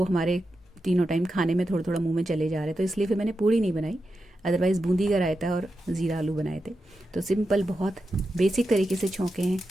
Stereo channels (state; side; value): normal; both; correlation 0.89